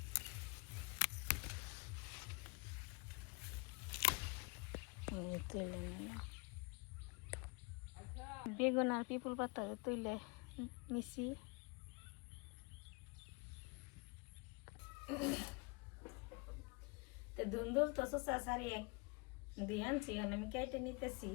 তুলে নিলাম বেগুন আর পিপুল পাতা তুলে নিছি। তো ধুন্দুল তো শসা সারি দুই আনছি, আমি কেটে নিতেছি।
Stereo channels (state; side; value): quieter; right; 28.6 dB